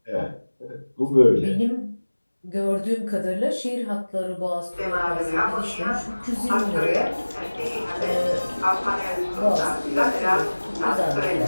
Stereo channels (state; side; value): inverted; both; correlation -1.00